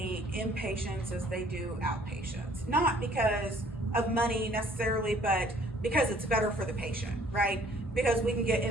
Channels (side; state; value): both; normal; correlation 0.58